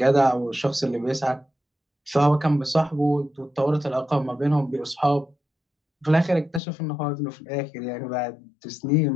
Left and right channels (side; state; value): right; drops out; at 6.6 s